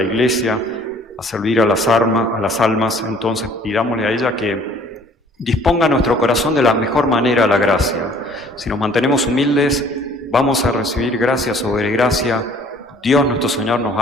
Iglesia, a servir a las almas, entonces pidámosle a ella que disponga nuestro corazón de la mejor manera a la gracia. Si nos mantenemos humildes, vamos a recibir gracia sobre gracia. Dios nuestro Señor nos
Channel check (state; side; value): normal; both; correlation 0.55